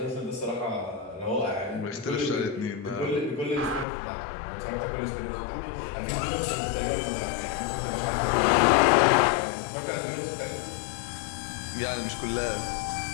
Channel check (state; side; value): drops out; right; at 3.9 s